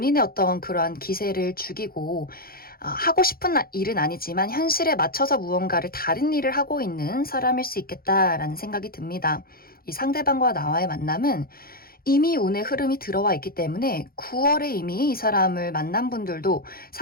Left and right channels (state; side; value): late; right; 0.43 ms